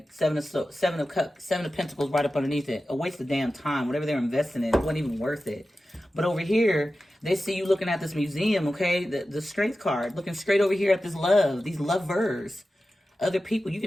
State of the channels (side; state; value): both; normal; correlation 0.93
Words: Seven of Pentacles right up underneath it. A waste of damn time. Whatever they're investing in, it wasn't even worth it. But over here, they see you looking at this museum, okay? The Strength card. Looking straight over here at this love. These lovers. Other people, you